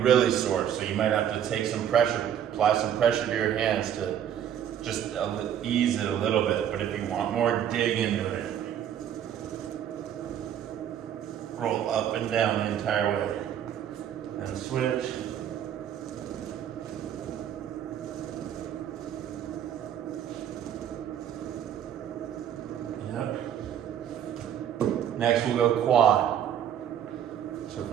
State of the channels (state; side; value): quieter; left; 9.7 dB